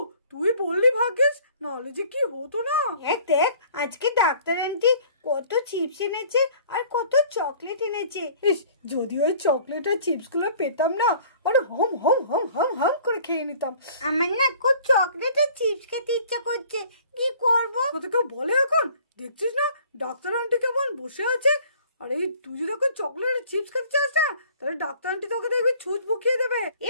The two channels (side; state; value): both; inverted; correlation -0.52